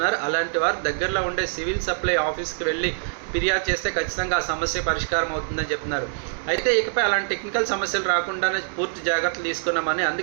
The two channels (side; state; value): left; silent; digital silence